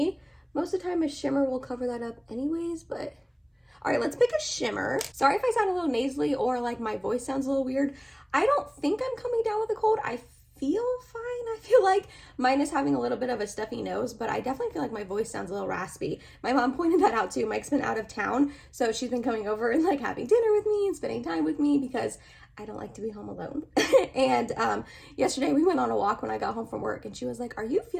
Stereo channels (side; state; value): both; identical; correlation 1.00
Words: Most of the time a shimmer will cover that up anyways, but All right, let's pick a shimmer. Sorry if I sound a little nasally or like my voice sounds a little weird. I don't think I'm coming down with a cold. I feel fine. I feel like mine is having a little bit of a stuffy nose, but I definitely feel like my voice sounds a little raspy. My mom pointed that out too. Mike's been out of town, so she's been coming over and like having dinner with me and spending time with me because I don't like to be home alone. And yesterday we went on a walk when I got home from work, and she was like, "Are you